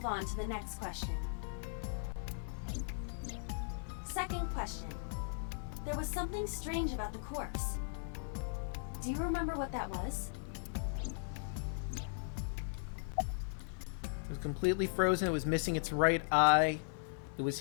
on to the next question. Second question. There was something strange about the corpse. Do you remember what that was? It was completely frozen. It was missing its right eye. It was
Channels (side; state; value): right; silent; digital silence